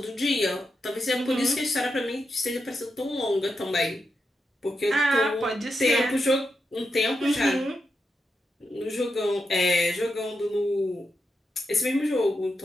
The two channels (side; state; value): both; normal; correlation 0.86